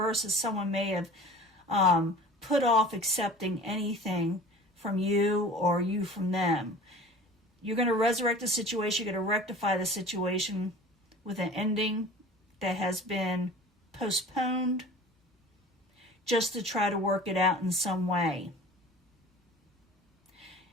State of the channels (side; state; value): both; normal; correlation 0.42